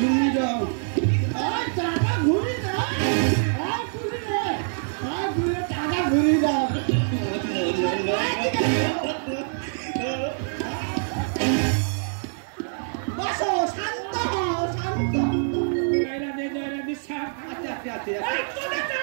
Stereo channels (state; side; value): silent; left; digital silence